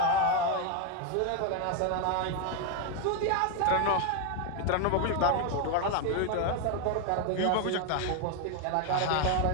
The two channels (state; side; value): different; both; correlation 0.01